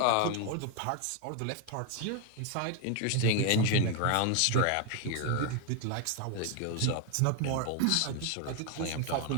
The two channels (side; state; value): both; different; correlation 0.00